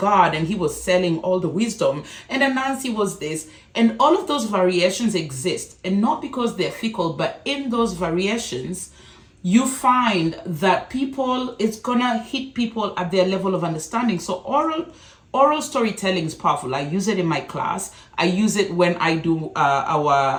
and he was selling all the wisdom, and Anansi was this. And all of those variations exist, and not because they're fickle, but in those variations, you find that it's gonna hit people at their level of understanding. So oral storytelling is powerful. I use it in my class. I use it when I do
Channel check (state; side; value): identical; both; correlation 1.00